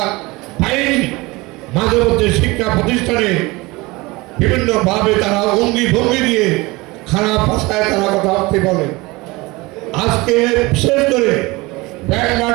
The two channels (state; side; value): quieter; left; 22.8 dB